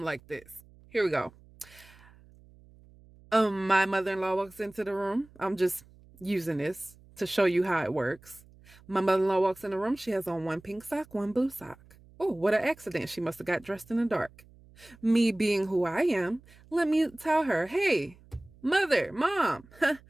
like this. Here we go. My mother-in-law walks into the room. I'm just using this to show you how it works. My mother-in-law walks in the room. She has on one pink sock, one blue sock. Oh, what an accident. She must have got dressed in the dark. Me being who I am, let me tell her, hey, mother, mom,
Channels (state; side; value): noise; right; hum, 25 dB below the sound